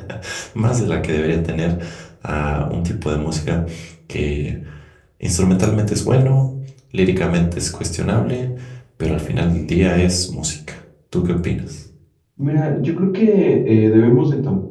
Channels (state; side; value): identical; both; correlation 1.00